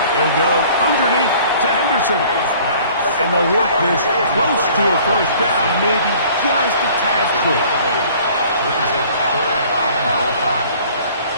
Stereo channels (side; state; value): both; inverted; correlation -0.52